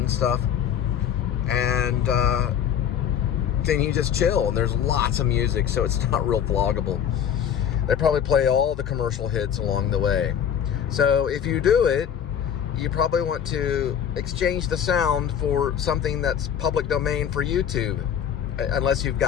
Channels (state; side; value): quieter; right; 8.7 dB